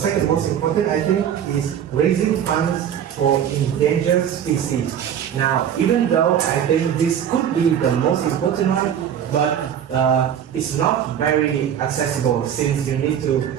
most important, I think, is raising funds for endangered species. Now, even though I think this could be the most important one, but it's not very accessible since you need to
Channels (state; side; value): quieter; left; 9.3 dB